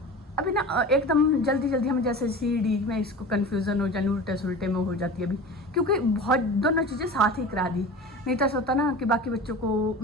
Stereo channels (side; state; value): both; normal; correlation 0.34